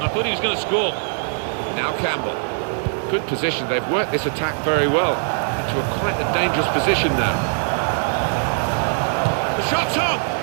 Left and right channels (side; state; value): left; silent; 65 dB below the other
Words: I thought he was going to score. Now Campbell. Good position. They've worked this attack very well into quite a dangerous position now. The shot's on!